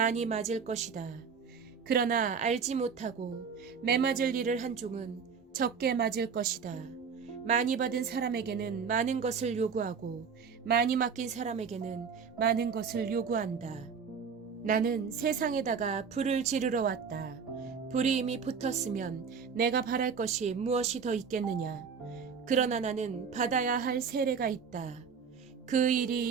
맞을 것이다. 그러나 알지 못하고 매맞을 일을 한 종은 적게 맞을 것이다. 많이 받은 사람에게는 많은 것을 요구하고 많이 맡긴 사람에게는 많은 것을 요구한다. 나는 세상에다가 불을 지르러 왔다. 불이 이미 붙었으면 내가 바랄 것이 무엇이 더 있겠느냐. 그러나 나는 받아야 할 세례가 있다. 그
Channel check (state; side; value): quieter; left; 6.1 dB